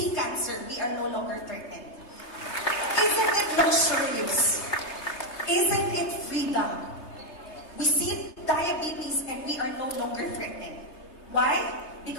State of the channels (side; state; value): right; late; 3.3 ms